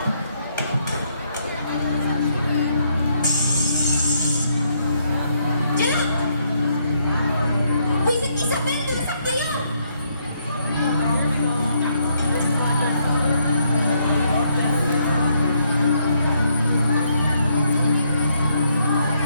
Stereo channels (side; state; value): both; inverted; correlation -0.74